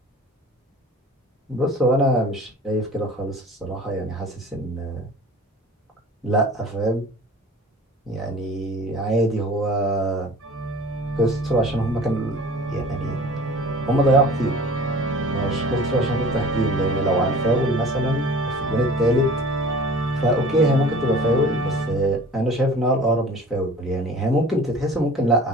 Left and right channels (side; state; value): both; normal; correlation 0.44